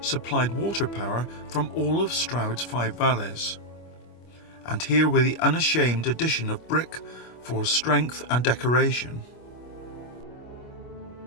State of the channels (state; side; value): late; right; 25 ms